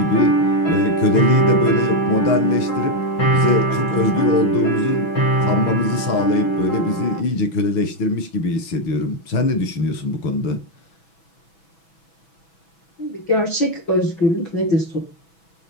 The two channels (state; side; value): late; right; 6.1 ms